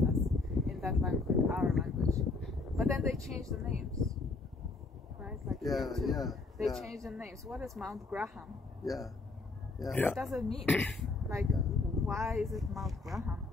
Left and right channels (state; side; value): quieter; right; 3.5 dB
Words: us in that language, our language. But then they changed the names, right? Like they changed the names. What is Mount Graham? What does it mean? Like, why is it Mount Graham?